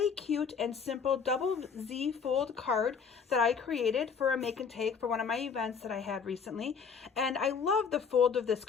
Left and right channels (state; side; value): quieter; right; 6.2 dB